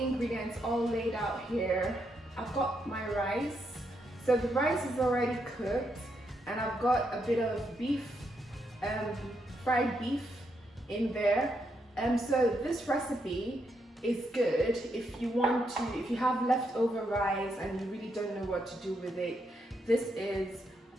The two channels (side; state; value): both; normal; correlation 0.79